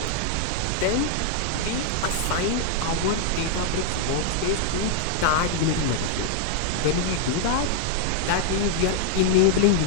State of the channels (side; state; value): both; different; correlation -0.01